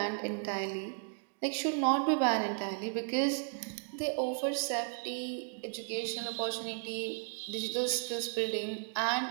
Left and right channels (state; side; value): silent; left; 55 dB below the other